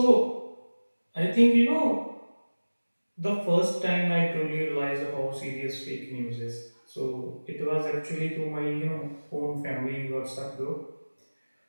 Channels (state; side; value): inverted; both; correlation -1.00